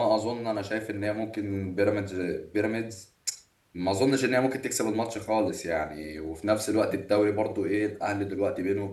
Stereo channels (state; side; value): identical; both; correlation 1.00